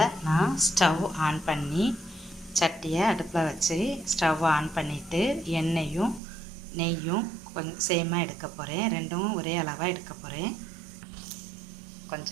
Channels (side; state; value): left; drops out; at 6.2 s